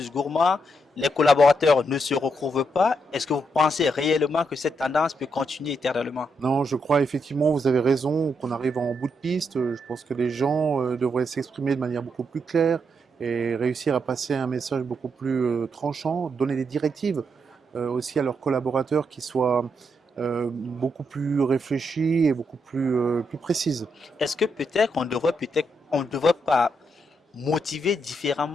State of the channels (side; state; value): both; normal; correlation 0.80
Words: gourmands, les collaborateurs ne se retrouvent pas. Est-ce que vous pensez réellement que cette tendance peut continuer éternellement? Non, je crois effectivement, vous avez raison, qu'on arrive en bout de piste. Je pense que les gens devraient s'exprimer de manière beaucoup plus claire et réussir à passer un message beaucoup plus tranchant, donner des directives aussi à leurs collaborateurs qui soient beaucoup plus réfléchies et beaucoup plus précises. Est-ce que peut-être on ne devrait pas motiver